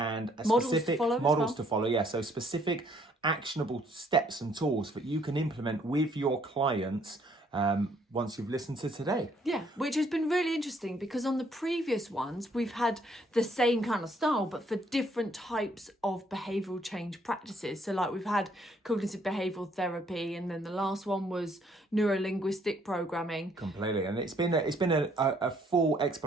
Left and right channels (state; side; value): normal; both; correlation 0.66